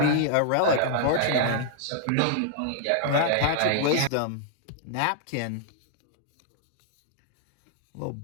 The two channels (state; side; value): different; both; correlation -0.01